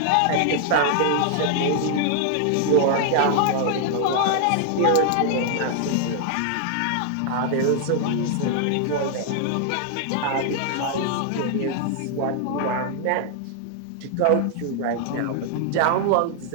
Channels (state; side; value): different; both; correlation 0.00